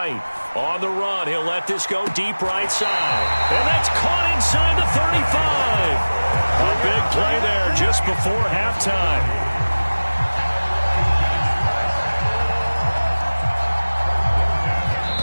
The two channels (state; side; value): inverted; both; correlation -1.00